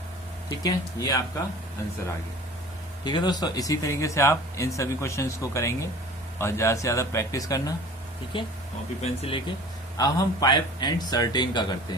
ठीक है, ये आपका आंसर आ गया। ठीक है दोस्तों, इसी तरीके से आप इन सभी क्वेश्चंस को करेंगे और ज़्यादा से ज़्यादा प्रैक्टिस करना। ठीक है, कॉपी पेन से लेके। अब हम पाइप एंड सर्टेन का करते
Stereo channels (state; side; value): normal; both; correlation 0.43